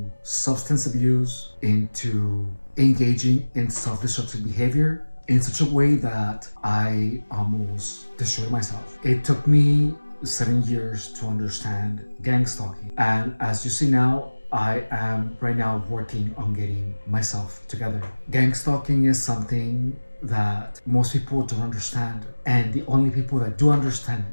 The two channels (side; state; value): both; inverted; correlation -1.00